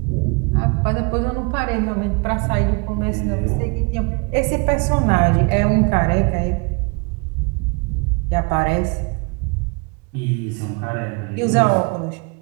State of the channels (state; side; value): quieter; left; 31.4 dB